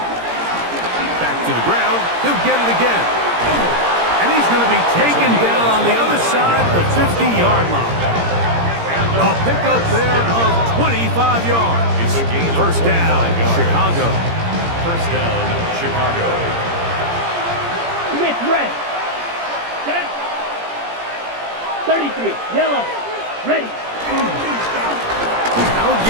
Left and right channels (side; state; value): left; late; 17 ms